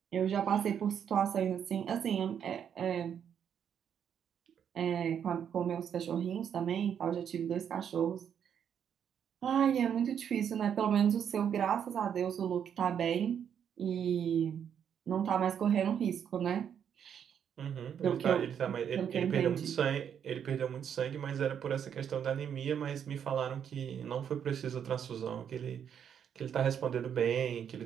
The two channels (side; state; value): left; quieter; 8.4 dB